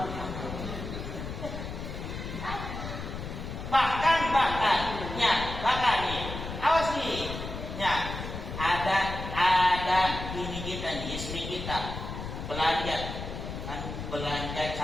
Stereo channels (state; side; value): noise; left; rumble, 7 dB below the sound